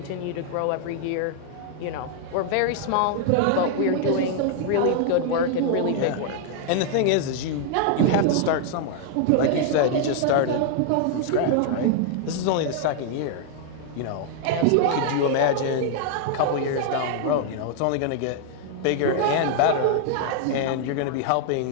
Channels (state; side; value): different; both; correlation 0.00